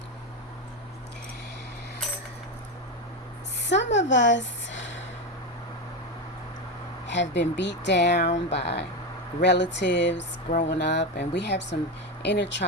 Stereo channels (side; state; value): both; normal; correlation 0.14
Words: Some of us have been beat down by relatives growing up, and we have some inner